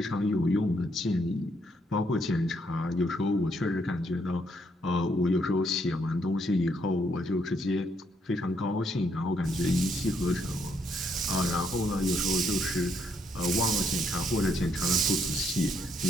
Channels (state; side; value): normal; both; correlation 0.73